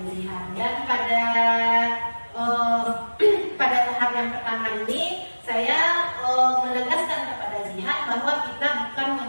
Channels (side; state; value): both; inverted; correlation -1.00